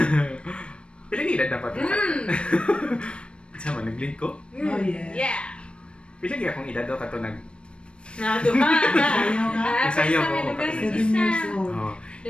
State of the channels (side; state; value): right; late; 0.057 ms